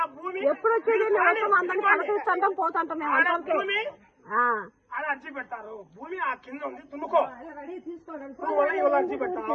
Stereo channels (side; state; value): both; identical; correlation 1.00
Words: భూమి ఎప్పుడు వచ్చేది అందరినీ పలకరిస్తుంటాం పోతుంటాం మేము ఆడ అర్జీ పెడతారు. భూమి ఆ కింద ఉంది తున్నుకో, నువ్వు అర్జీ